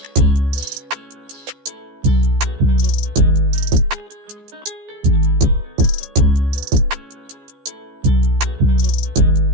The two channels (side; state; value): left; late; 14 ms